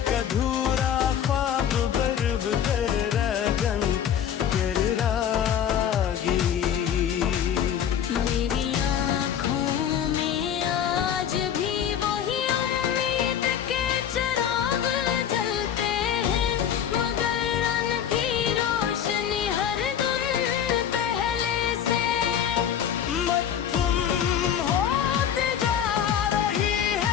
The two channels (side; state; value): right; quieter; 9.1 dB